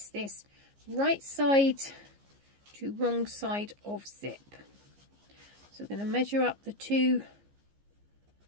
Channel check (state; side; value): late; left; 15 ms